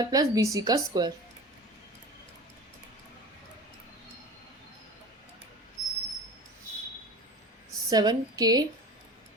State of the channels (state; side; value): normal; both; correlation 0.35